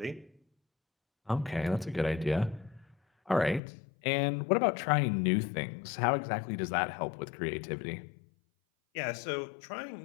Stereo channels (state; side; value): drops out; right; at 3.6 s